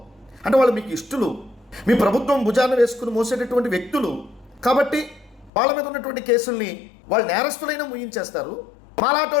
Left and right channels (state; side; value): drops out; right; at 5.5 s